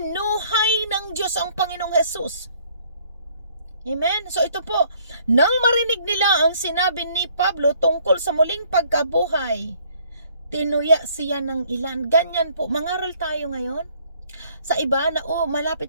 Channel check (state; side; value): inverted; both; correlation -0.61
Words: ng Diyos ang Panginoong Hesus. Amen? So ito po, nang marinig nila ang sinabi ni Pablo tungkol sa muling pagkabuhay, tinuya siya ng ilan. Ganyan po, mangaral tayo ngayon. Sa iba na malapit